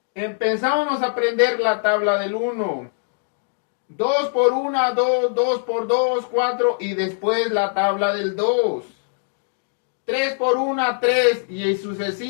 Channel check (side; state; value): right; silent; digital silence